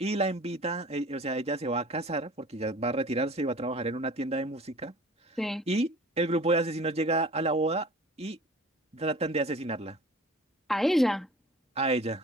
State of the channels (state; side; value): normal; both; correlation 0.44